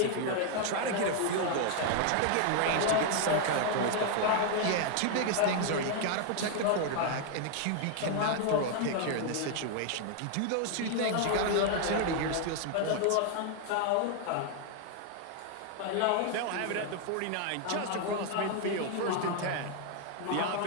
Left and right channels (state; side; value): different; both; correlation 0.00